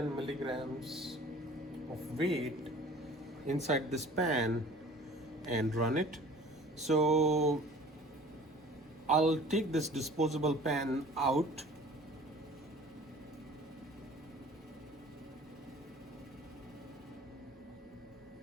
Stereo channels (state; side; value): normal; both; correlation 0.47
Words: milligrams of weight inside this pan and run it. So I'll take this disposable pan out